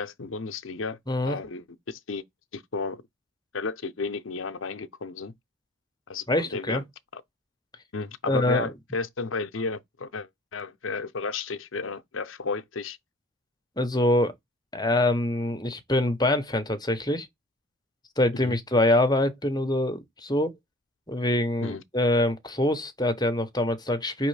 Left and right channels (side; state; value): both; normal; correlation 0.47